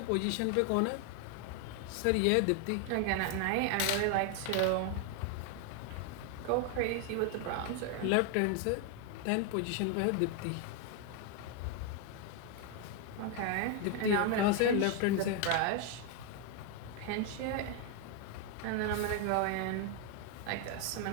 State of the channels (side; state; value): both; different; correlation 0.01